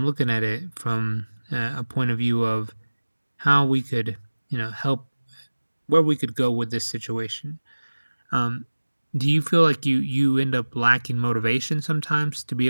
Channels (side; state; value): both; inverted; correlation -1.00